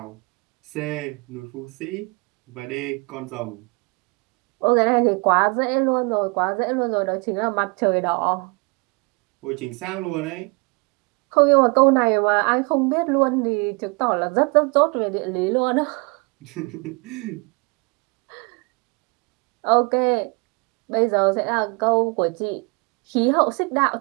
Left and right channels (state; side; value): quieter; left; 30.0 dB